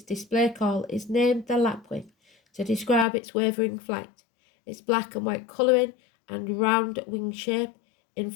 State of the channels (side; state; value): right; drops out; at 3.1 s